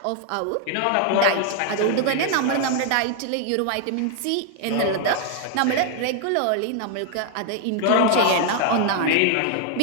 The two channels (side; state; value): both; different; correlation 0.00